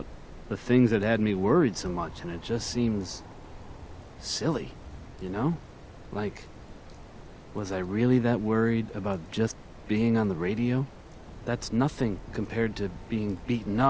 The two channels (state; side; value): identical; both; correlation 1.00